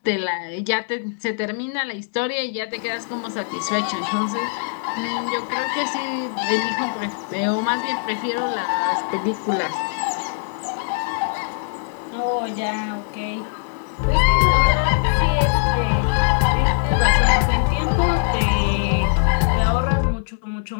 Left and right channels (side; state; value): right; silent; digital silence